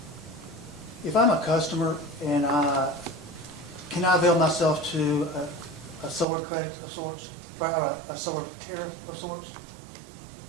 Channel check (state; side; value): drops out; left; at 6.2 s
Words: If I'm a customer and can I avail myself to a solar credit of sorts, or a solar tariff of sorts?